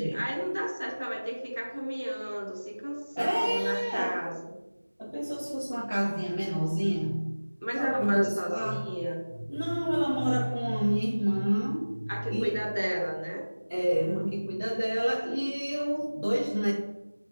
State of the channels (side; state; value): both; inverted; correlation -1.00